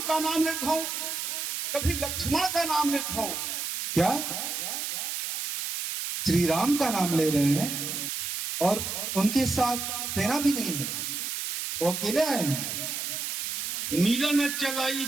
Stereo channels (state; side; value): noise; right; hiss, 3 dB below the sound